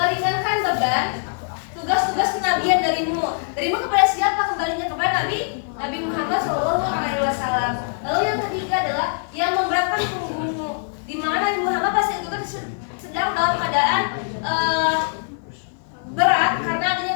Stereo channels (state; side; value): silent; right; 58 dB below the other